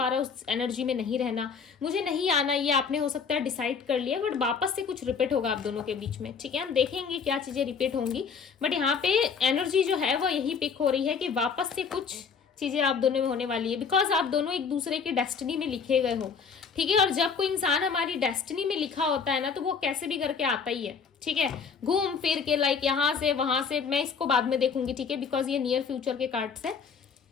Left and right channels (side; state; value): right; quieter; 5.9 dB